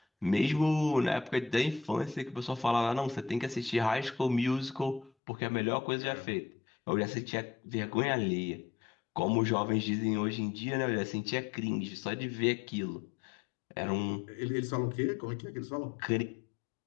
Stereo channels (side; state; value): right; drops out; at 5.1 s